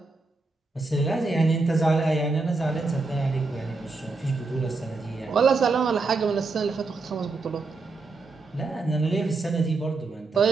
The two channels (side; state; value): left; quieter; 3.8 dB